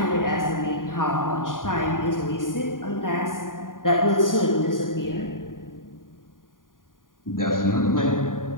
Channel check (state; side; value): late; right; 0.89 ms